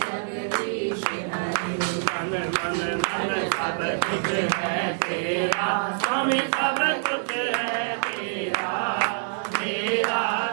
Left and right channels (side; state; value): left; silent; digital silence